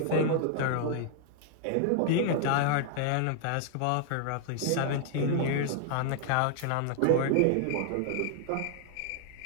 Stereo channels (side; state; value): both; different; correlation 0.00